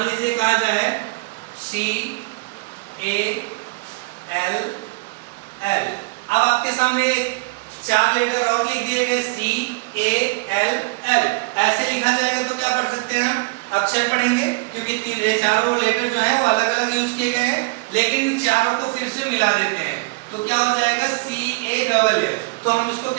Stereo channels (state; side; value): quieter; left; 27.6 dB